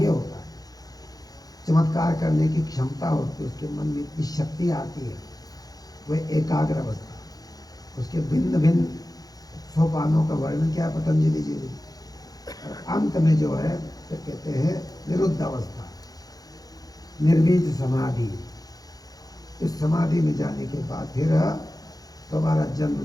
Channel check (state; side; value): late; right; 0.18 ms